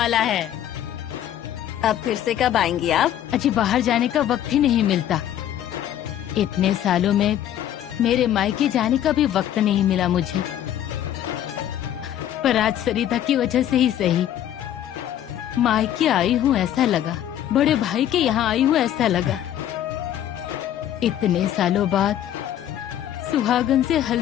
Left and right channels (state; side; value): quieter; right; 11.2 dB